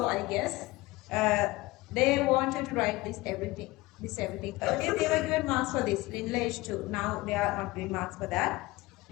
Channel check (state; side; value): quieter; right; 20.4 dB